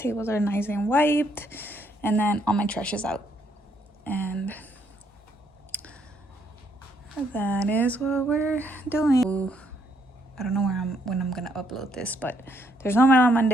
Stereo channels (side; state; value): both; normal; correlation 0.71